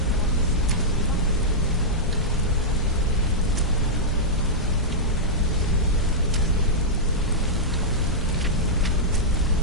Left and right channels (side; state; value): both; normal; correlation -0.09